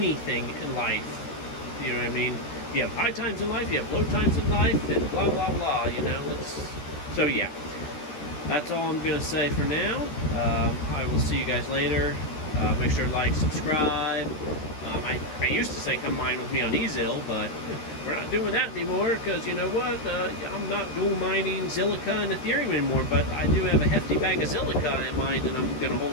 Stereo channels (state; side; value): late; right; 13 ms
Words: in life. You know what I mean? You have high times in life, you have low times in life, and blah blah blah. You know, so yeah. That's all I'm going to say for now. I will see you guys later. Make sure to like, subscribe. I used to say come mine with me on Ezil, but we're not doing that anymore because, you know what? I'm not dual mining Zilliqa and Ethereum anymore, but I do have a hefty bag of Zilliqa in mind that I'm going to